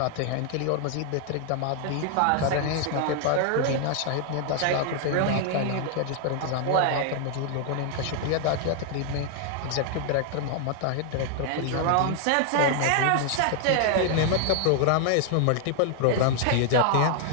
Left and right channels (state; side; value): different; both; correlation 0.00